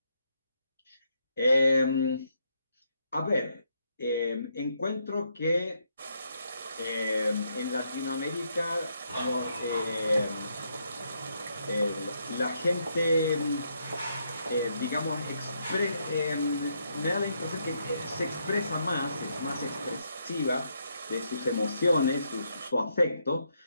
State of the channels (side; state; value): both; inverted; correlation -0.77